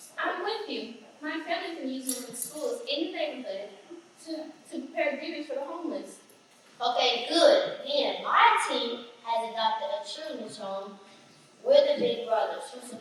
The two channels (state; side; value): identical; both; correlation 1.00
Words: I'm with you. My family can use them in schools in the neighborhood to prepare goodies for the homeless. Okay, good. Then my team has adopted a children's home. We're the big brothers who